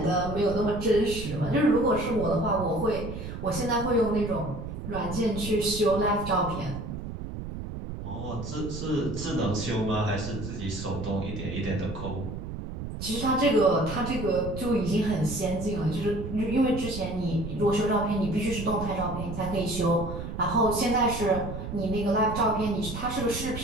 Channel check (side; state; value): right; noise; rumble, 7 dB below the sound